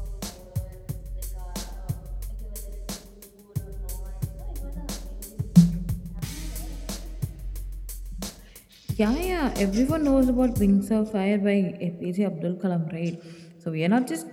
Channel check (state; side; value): identical; both; correlation 1.00